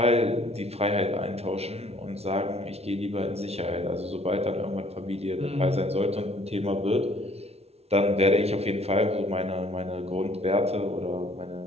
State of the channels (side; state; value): left; late; 0.30 ms